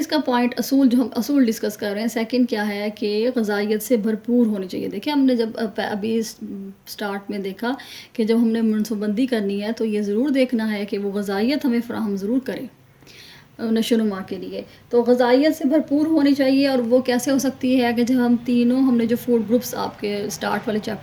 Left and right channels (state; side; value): identical; both; correlation 1.00